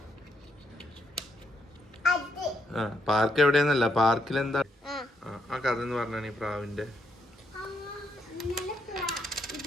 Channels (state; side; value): normal; both; correlation 0.77